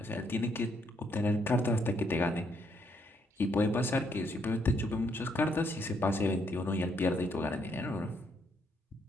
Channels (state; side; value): normal; both; correlation 0.73